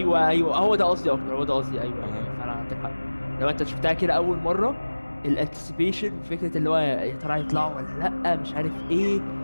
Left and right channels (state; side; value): inverted; both; correlation -1.00